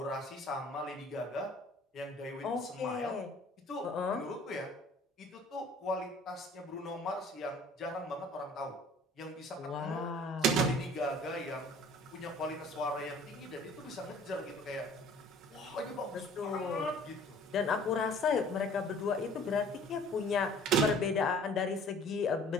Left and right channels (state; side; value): normal; both; correlation 0.50